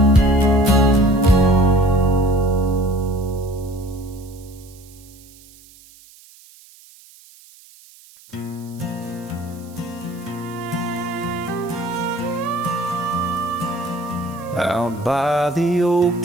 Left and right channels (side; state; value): right; noise; hiss, 24 dB below the sound